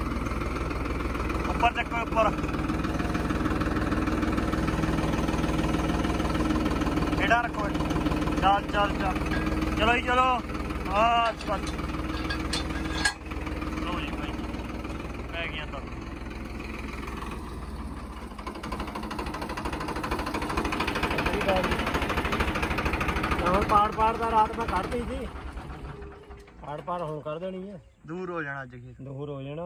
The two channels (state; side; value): identical; both; correlation 1.00